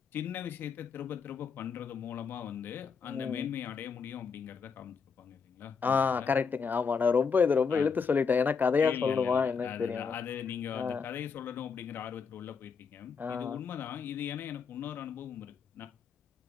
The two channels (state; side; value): quieter; right; 5.7 dB